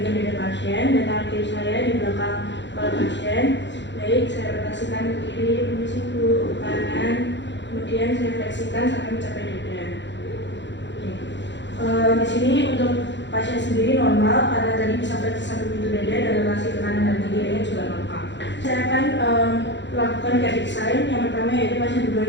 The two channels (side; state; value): right; late; 0.52 ms